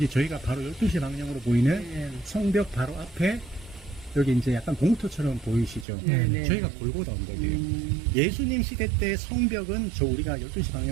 저희가 바로 12시 방향으로 보이는 성벽 바로 앞에 여기 이제 약간 공터처럼 보이시죠? 저희가 골고다 언덕이에요. 예수님 시대 때 성벽은 저 우리가 12시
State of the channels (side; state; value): left; drops out; at 5.9 s